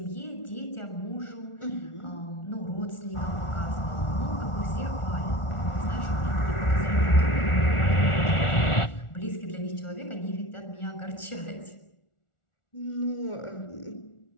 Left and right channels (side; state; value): right; late; 1.4 ms